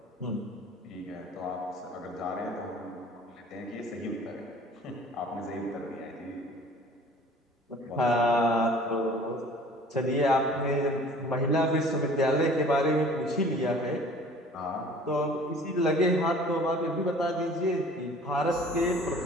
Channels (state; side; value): normal; both; correlation 0.49